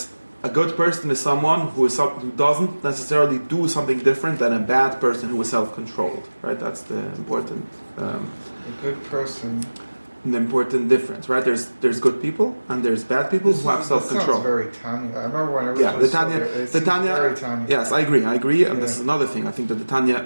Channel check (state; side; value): inverted; both; correlation -1.00